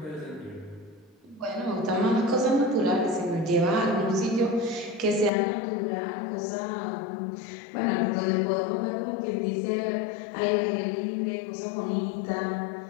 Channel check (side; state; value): right; drops out; at 5.3 s